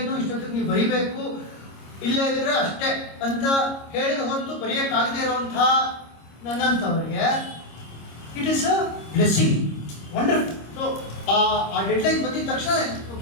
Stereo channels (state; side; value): late; right; 26 ms